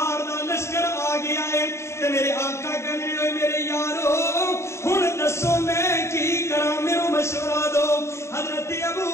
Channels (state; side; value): late; right; 0.13 ms